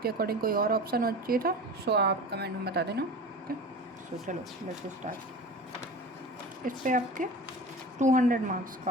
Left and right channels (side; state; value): both; normal; correlation 0.35